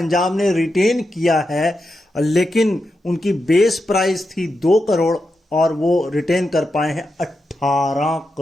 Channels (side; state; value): both; normal; correlation 0.87